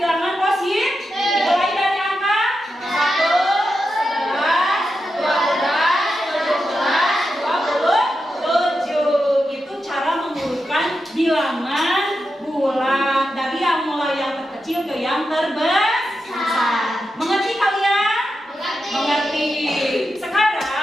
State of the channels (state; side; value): normal; both; correlation 0.88